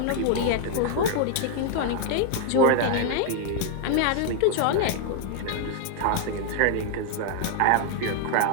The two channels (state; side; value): different; both; correlation 0.00